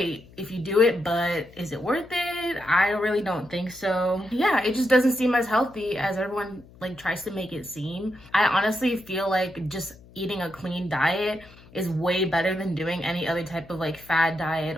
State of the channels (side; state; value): left; noise; hum, 23 dB below the sound